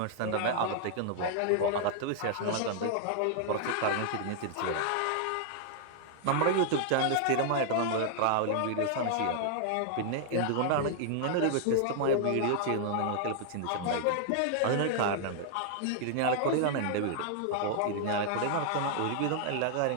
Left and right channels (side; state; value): both; different; correlation -0.01